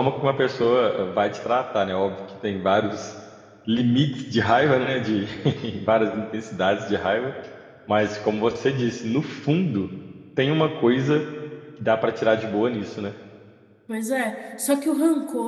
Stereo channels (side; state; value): both; identical; correlation 1.00